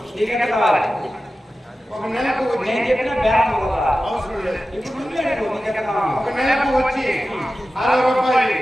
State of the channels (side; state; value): both; normal; correlation 0.94